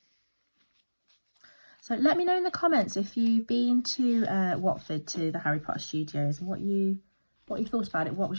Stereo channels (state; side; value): inverted; both; correlation -1.00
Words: So let me know in the comments if you've been to Watford, to the Harry Potter Studios, and what you thought about it. What